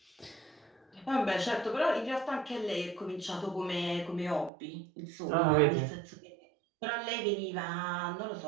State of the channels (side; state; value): left; drops out; at 4.5 s